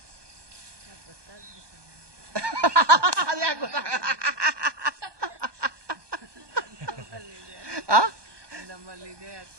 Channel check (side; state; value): left; late; 1.2 ms